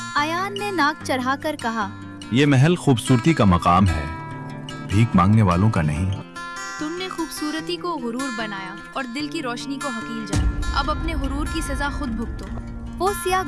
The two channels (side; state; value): both; identical; correlation 1.00